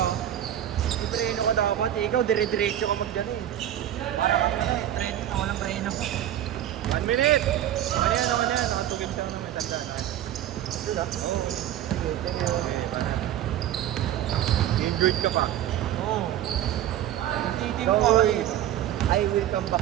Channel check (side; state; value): left; quieter; 11.7 dB